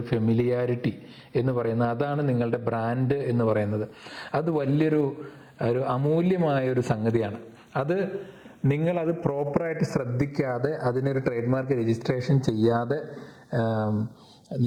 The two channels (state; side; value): identical; both; correlation 1.00